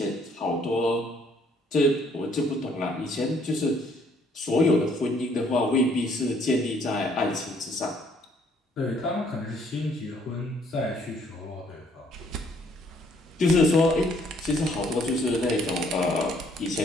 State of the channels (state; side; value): normal; both; correlation 0.64